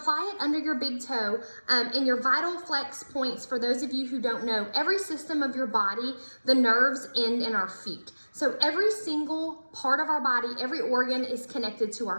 it under your big toe, and your VitaFlex points, for those of you who don't know, every system of your body, the nerves end in our feet. So every single part of our body, every organ is connected to our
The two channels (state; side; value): inverted; both; correlation -1.00